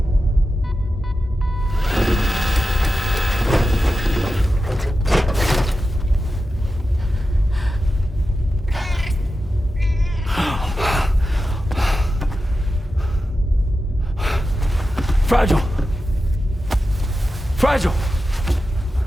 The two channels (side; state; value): both; normal; correlation 0.91